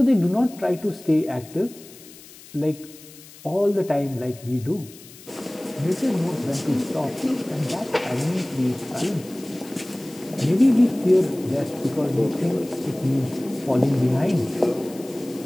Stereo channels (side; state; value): left; noise; hiss, 20 dB below the sound